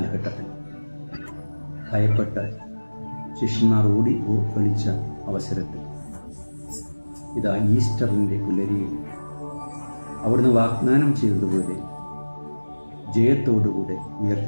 ഭയപ്പെട്ട് ശിഷ്യന്മാർ ഓടി ഒളിച്ച അവസരത്തിൽ ഇതാ ഈസ്റ്ററിൻ്റെ പുലരിയിൽ അവിടുന്ന് വാഗ്ദാനം ചെയ്തതുപോലെ ജയത്തോടുകൂടെ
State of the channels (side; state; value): both; inverted; correlation -1.00